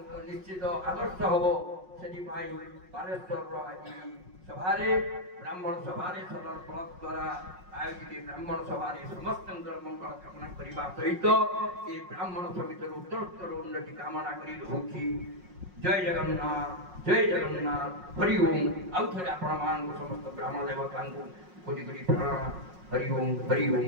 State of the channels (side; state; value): left; late; 5.5 ms